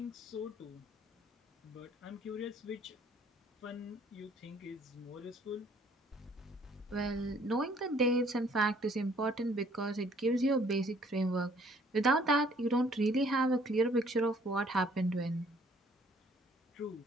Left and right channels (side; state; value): both; normal; correlation 0.60